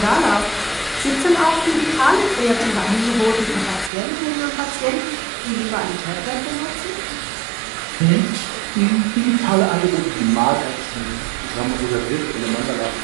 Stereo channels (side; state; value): left; drops out; at 3.9 s